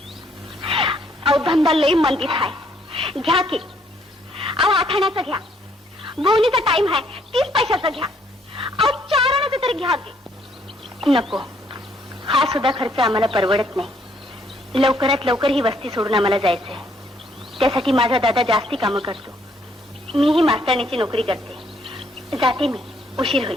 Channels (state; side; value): normal; both; correlation 0.68